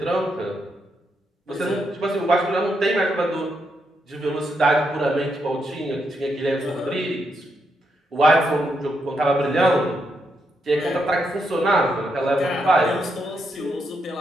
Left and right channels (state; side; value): normal; both; correlation 0.80